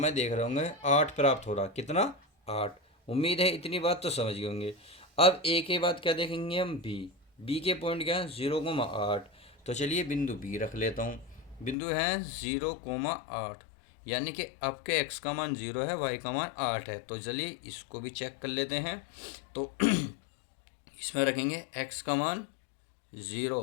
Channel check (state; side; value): drops out; right; at 11.8 s